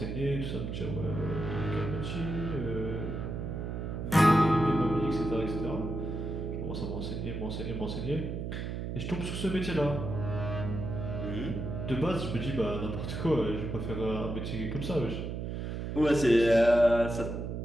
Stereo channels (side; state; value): right; noise; hum, 4 dB below the sound